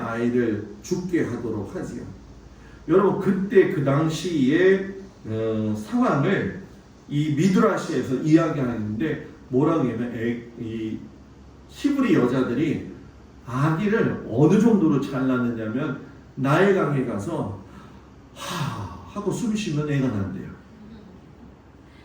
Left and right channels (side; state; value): both; identical; correlation 1.00